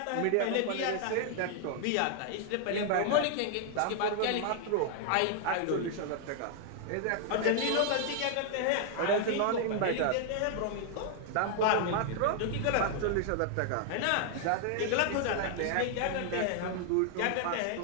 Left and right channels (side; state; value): both; different; correlation 0.00